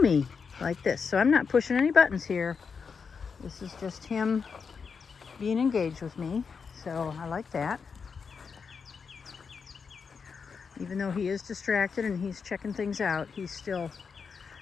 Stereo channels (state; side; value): quieter; right; 5.7 dB